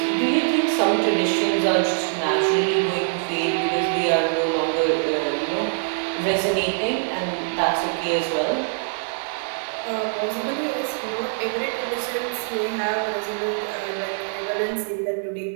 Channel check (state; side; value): silent; left; digital silence